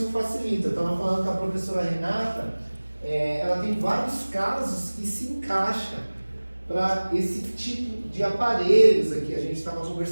facilita. Eu estava falando com a professora Renata, ela tem vários casos que se encaixam para esse tipo de aparelhos aqui. A gente estava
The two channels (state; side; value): inverted; both; correlation -1.00